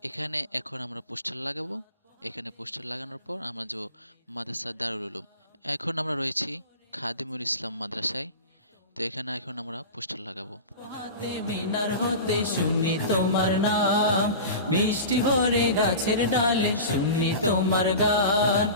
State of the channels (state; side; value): inverted; both; correlation -0.32